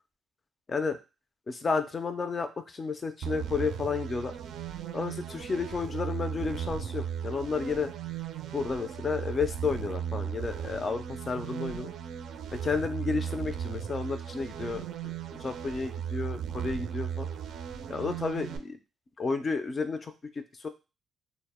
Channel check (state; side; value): normal; both; correlation 0.73